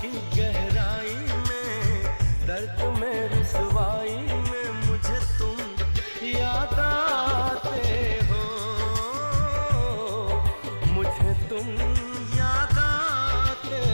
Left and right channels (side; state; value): both; inverted; correlation -1.00